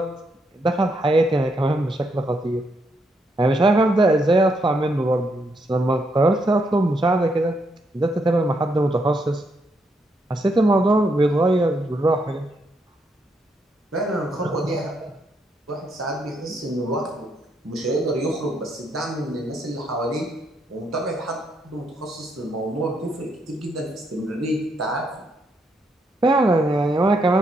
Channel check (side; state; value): both; normal; correlation 0.77